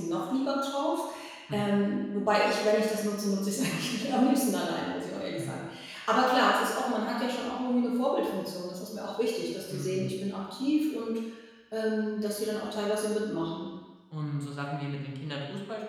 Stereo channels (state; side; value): identical; both; correlation 1.00